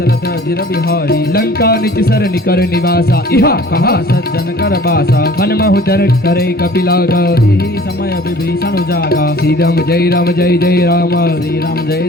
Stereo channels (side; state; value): both; normal; correlation 0.49